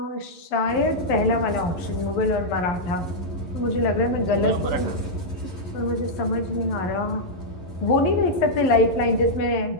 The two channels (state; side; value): late; right; 11 ms